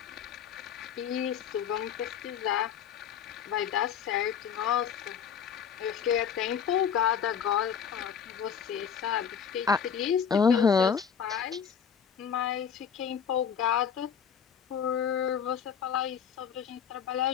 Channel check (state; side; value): quieter; right; 7.6 dB